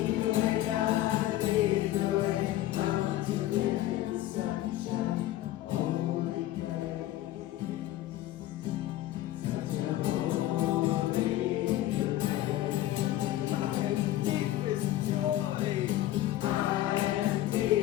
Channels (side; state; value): right; quieter; 14.4 dB